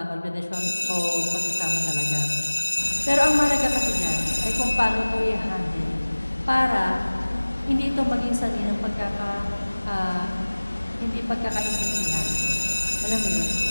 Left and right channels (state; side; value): inverted; both; correlation -1.00